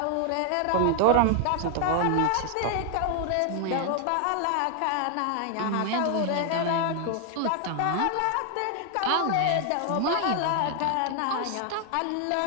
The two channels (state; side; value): different; both; correlation 0.00